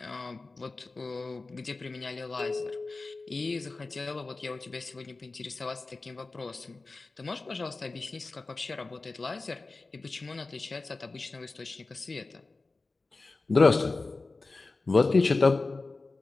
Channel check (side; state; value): right; quieter; 3.6 dB